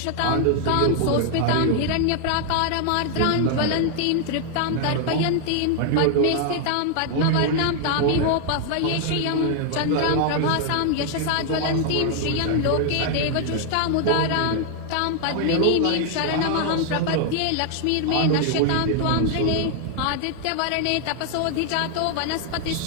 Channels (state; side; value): different; both; correlation 0.00